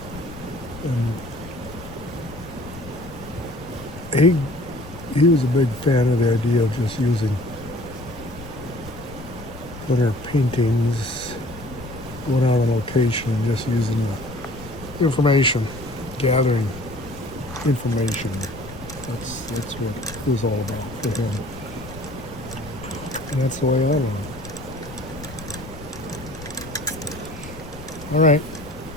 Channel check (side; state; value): left; noise; rumble, 15 dB below the sound